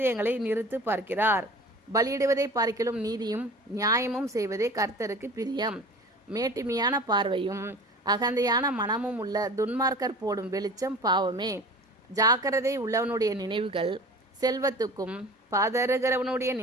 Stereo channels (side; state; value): both; normal; correlation 0.40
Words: நிறுத்து பார்க்கிறார். பலியிடுவதை பார்க்கிலும் நீதியும் நியாயமும் செய்வதே கர்த்தருக்கு பிரியம். மேட்டிமையான பார்வையும் அகந்தையான மனமும் உள்ள துன்மார்க்கர் போடும் வெளிச்சம் பாவமே. ஜாக்கிரதை உள்ளவனுடைய நினைவுகள் செல்வத்துக்கும் பதறுகிறவனுடைய